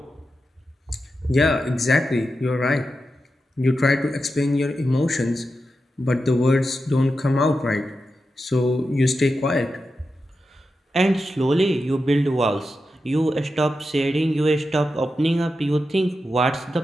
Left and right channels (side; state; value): both; normal; correlation 0.89